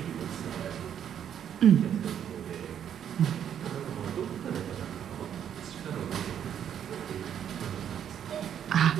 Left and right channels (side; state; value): left; quieter; 9.3 dB